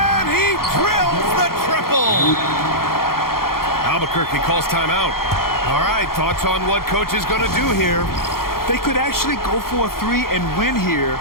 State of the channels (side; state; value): right; late; 0.93 ms